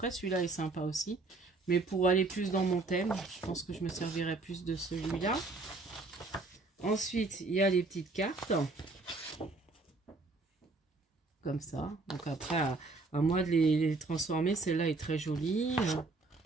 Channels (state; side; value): quieter; left; 3.4 dB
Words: celui-là est sympa aussi. Mais pour aller plus dans mon thème, je pense que je me servirai plus de celui-là. Ensuite, il y a les petites cartes. Comme ça. Donc après, à moi de les transformer. Celle-là est très jolie.